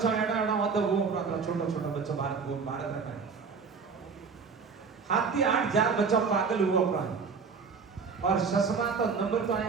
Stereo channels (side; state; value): left; quieter; 5.4 dB